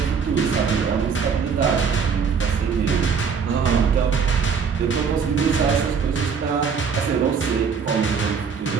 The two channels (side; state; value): left; quieter; 6.1 dB